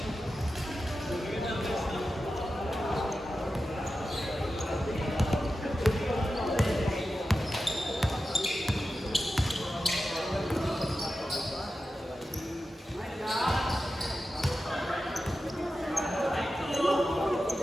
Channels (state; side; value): normal; both; correlation 0.92